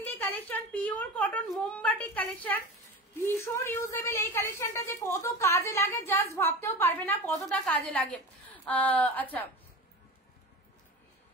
collection, pure cotton মোমবাটিক কালেকশন, ভীষণ ইউজেবল। এই কালেকশনটা যে কত কাজে লাগে জাস্ট ভাবতেও পারবে না কতটা কাজে লাগে। আচ্ছা,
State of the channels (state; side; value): normal; both; correlation 0.31